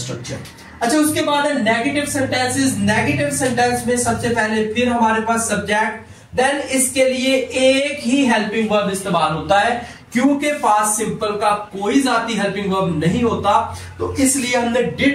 अच्छा, उसके बाद है नेगेटिव सेंटेंसेस. नेगेटिव सेंटेंस में सबसे पहले फिर हमारे पास सब्जेक्ट, देन इसके लिए एक ही हेल्पिंग वर्ब इस्तेमाल होता है, क्योंकि पास्ट सिंपल का कोई जाती हेल्पिंग वर्ब नहीं होता. तो इसलिए हमने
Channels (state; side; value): identical; both; correlation 1.00